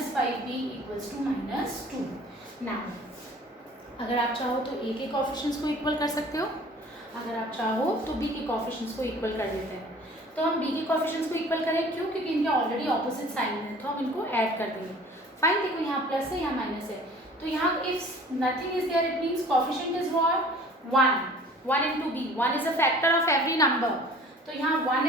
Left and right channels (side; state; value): both; normal; correlation 0.48